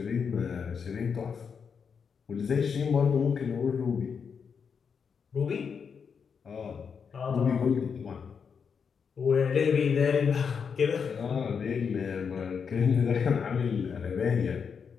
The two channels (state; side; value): quieter; right; 6.3 dB